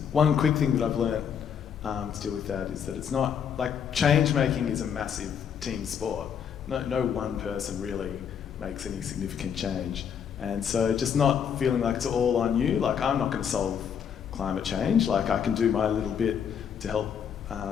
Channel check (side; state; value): right; quieter; 7.9 dB